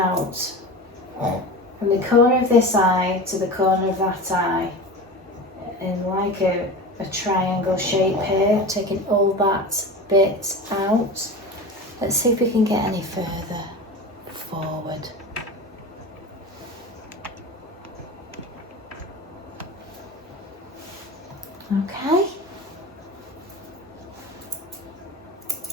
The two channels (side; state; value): both; normal; correlation 0.30